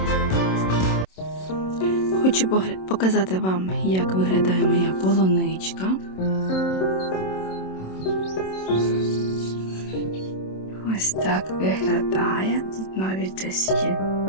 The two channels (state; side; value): late; right; 27 ms